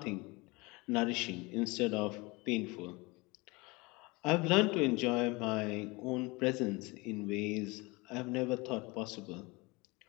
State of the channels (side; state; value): right; quieter; 25.0 dB